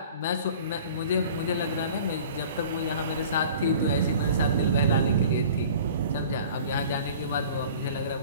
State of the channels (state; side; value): inverted; both; correlation -0.45